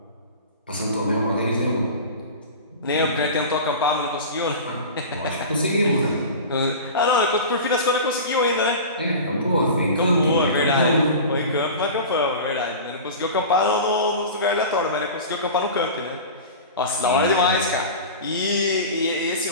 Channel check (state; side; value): inverted; both; correlation -0.33